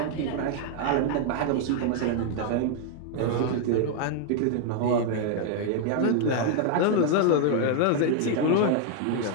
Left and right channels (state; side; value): different; both; correlation 0.00